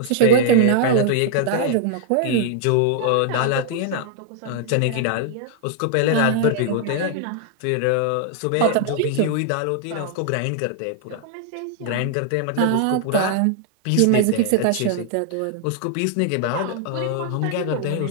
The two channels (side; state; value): both; different; correlation 0.00